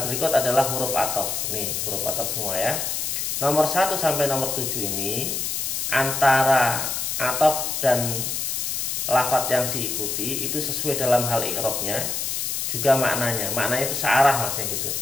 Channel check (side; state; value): left; noise; hiss, 1 dB below the sound